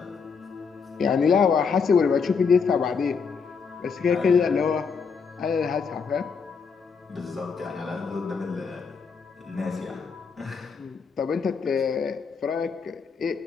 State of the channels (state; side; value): quieter; right; 5.6 dB